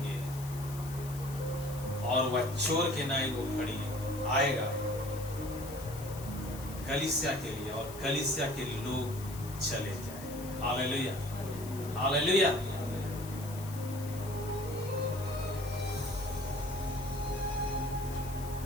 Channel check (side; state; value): left; noise; hiss, 15 dB below the sound